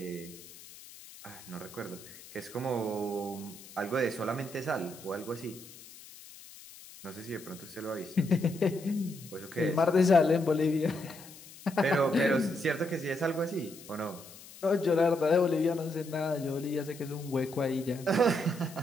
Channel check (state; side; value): noise; left; hiss, 18 dB below the sound